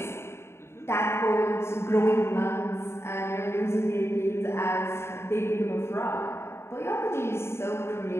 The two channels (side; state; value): right; late; 0.12 ms